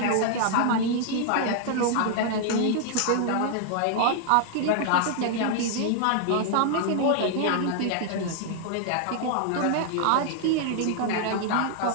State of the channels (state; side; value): different; both; correlation -0.01